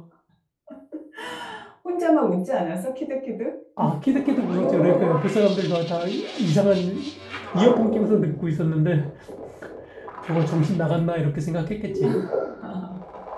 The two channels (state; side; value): identical; both; correlation 1.00